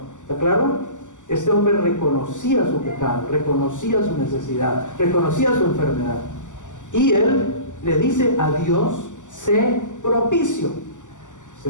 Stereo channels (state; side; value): late; right; 0.86 ms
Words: ¿Está claro? Este hombre reconocía su pecado, reconocía su necesidad, reconocía su enfermedad. Y él le dice a Dios, sé propicio. ¿Se